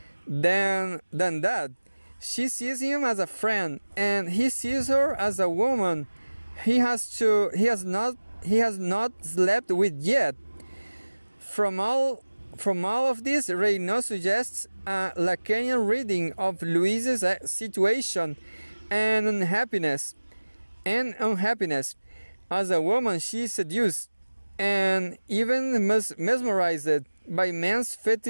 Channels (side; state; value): both; inverted; correlation -1.00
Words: than that. She sees him as a friend, and he sees her as a woman he has not slept with yet. From all of this, Reynaud suggests a Lacanian reading of Louise's situation and unhappiness. As a woman, she is seduced and even mesmerized by men's